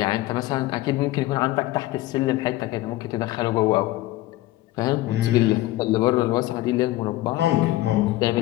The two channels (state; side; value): quieter; right; 17.0 dB